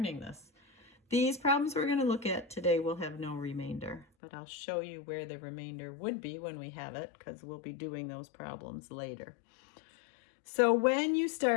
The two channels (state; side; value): drops out; right; at 4.0 s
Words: this. These problems we're going to look at today will have no remainder, but I'll show you where the remainder would be when we have it, because we'll be doing those problems later. So when you